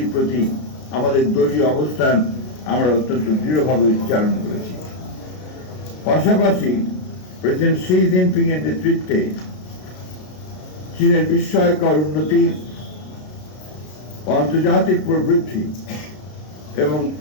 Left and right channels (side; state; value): right; late; 33 ms